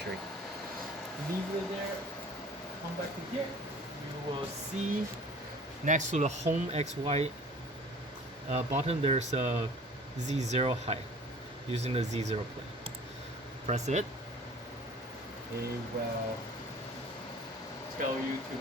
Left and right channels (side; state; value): both; normal; correlation 0.47